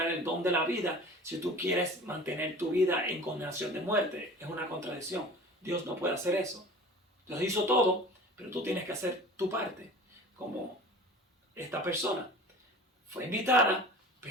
el don de la vida si tú quieres mantener tu vida en condenación de muerte. Es una contradicción. Dios no puede hacer eso. Dios hizo todo, pero tú tienes que hacer tu parte. Como esta persona fue invitada,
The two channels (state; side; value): normal; both; correlation 0.41